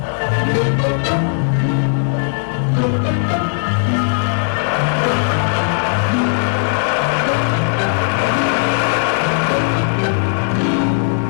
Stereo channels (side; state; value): right; silent; digital silence